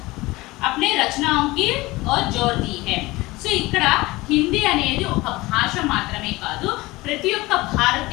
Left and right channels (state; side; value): quieter; right; 20.7 dB